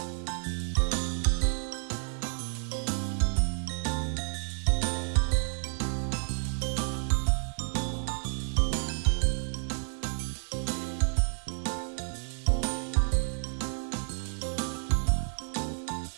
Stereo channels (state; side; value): silent; left; 57 dB below the other